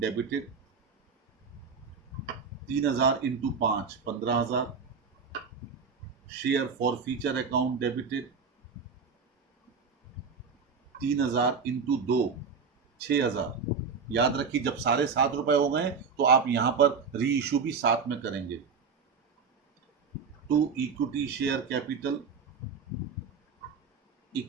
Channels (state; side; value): quieter; left; 5.4 dB